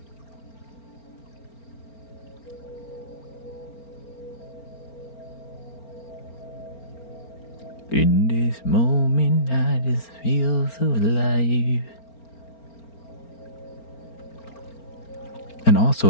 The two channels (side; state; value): right; late; 4.4 ms